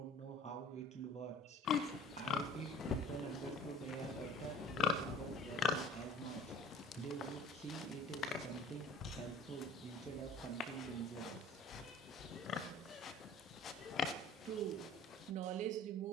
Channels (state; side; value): normal; both; correlation 0.46